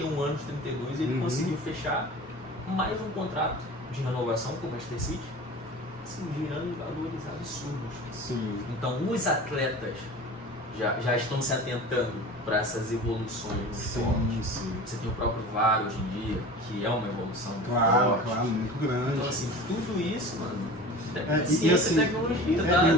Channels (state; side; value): normal; both; correlation 0.37